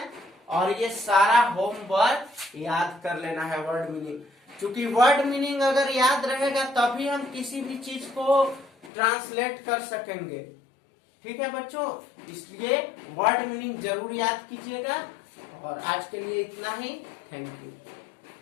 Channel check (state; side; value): drops out; right; at 8.9 s